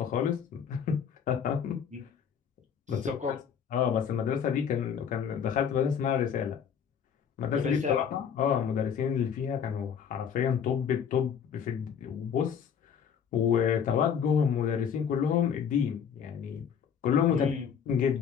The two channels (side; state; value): right; quieter; 7.6 dB